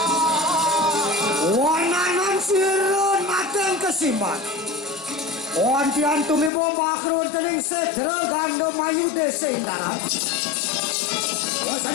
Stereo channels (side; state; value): right; drops out; at 6.5 s